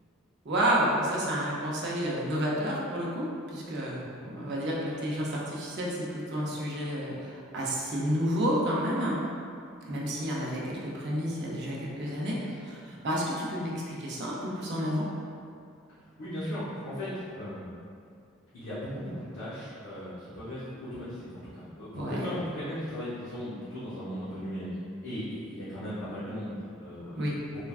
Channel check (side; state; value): both; normal; correlation 0.47